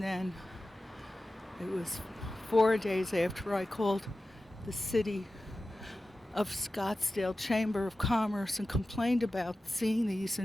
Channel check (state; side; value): normal; both; correlation 0.94